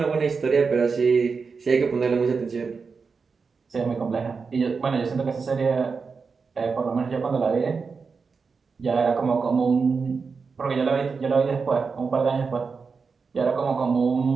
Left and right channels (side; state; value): left; quieter; 5.0 dB